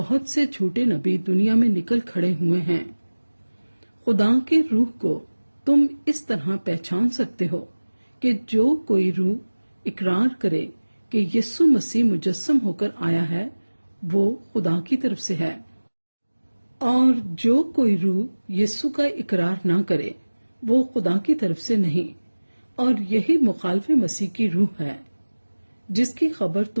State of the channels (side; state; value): both; inverted; correlation -1.00